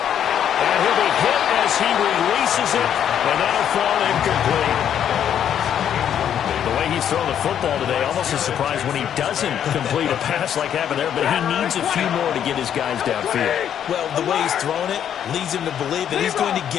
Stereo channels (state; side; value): quieter; right; 9.4 dB